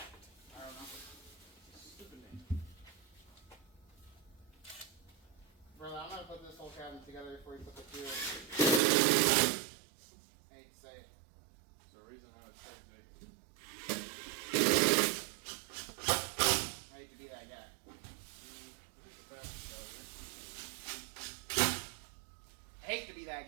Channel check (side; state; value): left; drops out; at 8.8 s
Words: I don't know. Stupid name. Brother, I'm gonna put this whole cabinet together before you put the fuel. I hate to say it. There's a reason I was so big. I hate to be that guy. I hate to be that